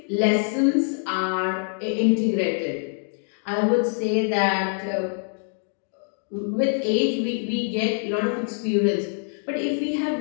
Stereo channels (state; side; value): silent; right; 58 dB below the other